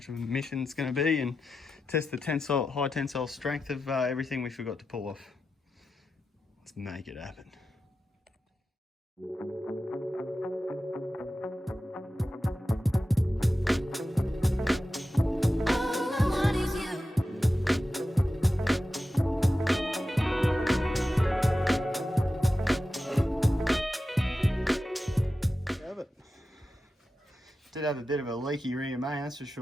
of a mission it's going to be, and test the high tensile strength of everything we forgot to pull off. Let's make it happen. Did have a bit of a leaky rear main, that's for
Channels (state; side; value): normal; both; correlation 0.91